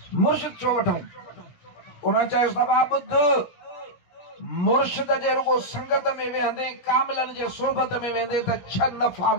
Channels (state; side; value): late; right; 17 ms